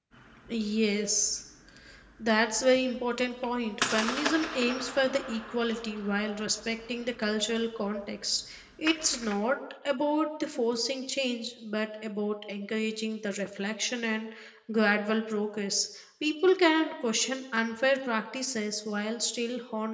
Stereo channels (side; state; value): both; identical; correlation 1.00